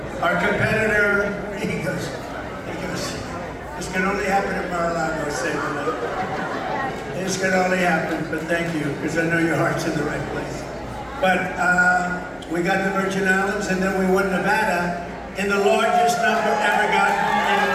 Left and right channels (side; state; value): both; identical; correlation 1.00